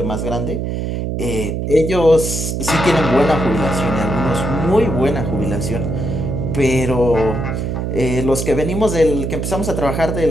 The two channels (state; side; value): noise; right; hum, 2 dB below the sound